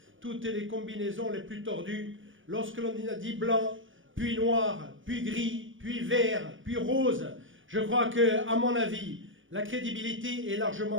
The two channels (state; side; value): late; left; 0.57 ms